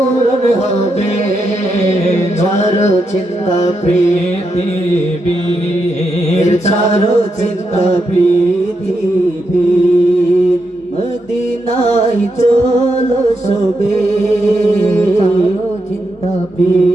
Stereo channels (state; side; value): normal; both; correlation 0.83